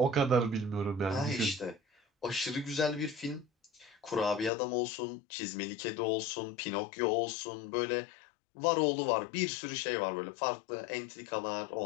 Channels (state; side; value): drops out; right; at 4.5 s